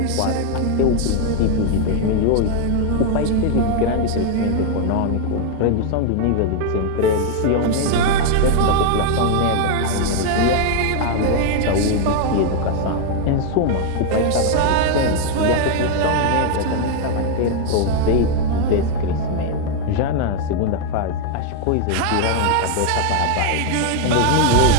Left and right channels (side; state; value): both; different; correlation 0.00